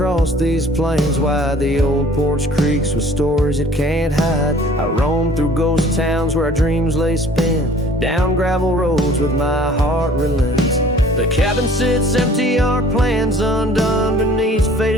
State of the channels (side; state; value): both; normal; correlation 0.52